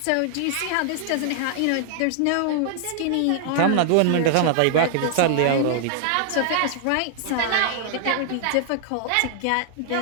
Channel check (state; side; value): different; both; correlation 0.00